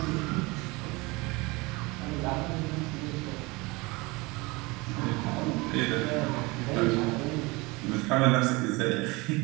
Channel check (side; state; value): left; quieter; 24.5 dB